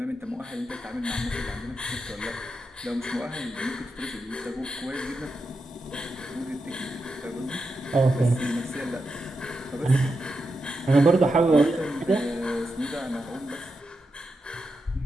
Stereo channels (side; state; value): both; normal; correlation 0.87